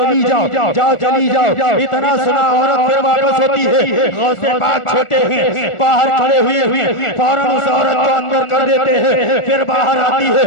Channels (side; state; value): right; late; 1.4 ms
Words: جاؤ چلی جاؤ۔ اتنا سنا عورت پھر واپس ہوتی ہے۔ غوث پاک چھوٹے ہیں باہر کھڑے ہوئے فوراً اس عورت کو اندر کر دیتے ہیں، پھر باہر آتی